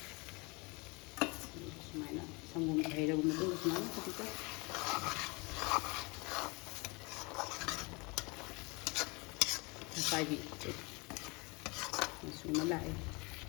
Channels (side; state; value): right; quieter; 28.0 dB